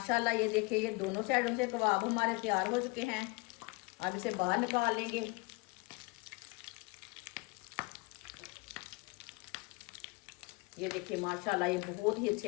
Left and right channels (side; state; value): right; quieter; 26.6 dB